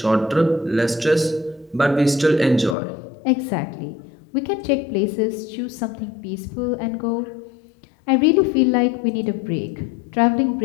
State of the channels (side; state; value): right; drops out; at 2.8 s